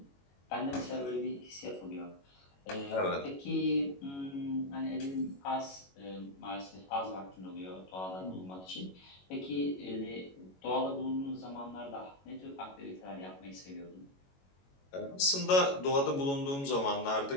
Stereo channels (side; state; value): right; late; 22 ms